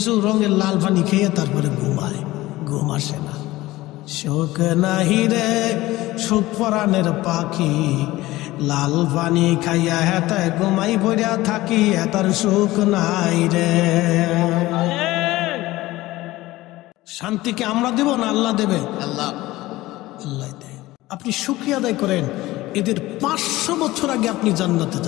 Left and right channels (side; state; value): right; quieter; 17.9 dB